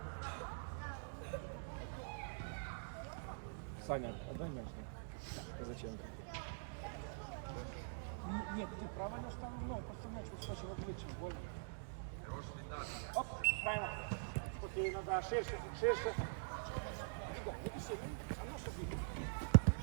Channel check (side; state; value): left; silent; digital silence